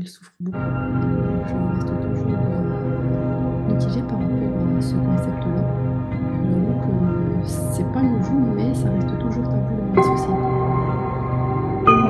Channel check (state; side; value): identical; both; correlation 1.00